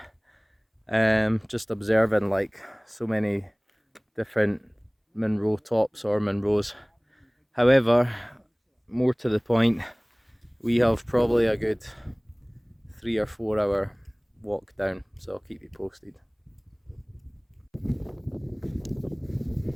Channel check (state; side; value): identical; both; correlation 1.00